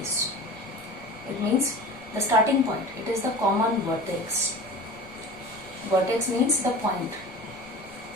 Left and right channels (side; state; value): left; noise; rumble, 25 dB below the sound